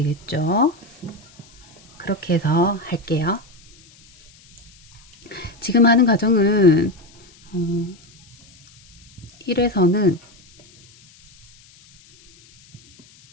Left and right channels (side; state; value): left; noise; hiss, 27 dB below the sound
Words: 그렇게 해서 할게요. 지금 하는 과정은 1에서는